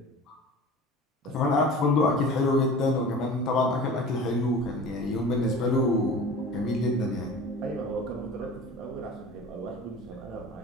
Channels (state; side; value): normal; both; correlation 0.39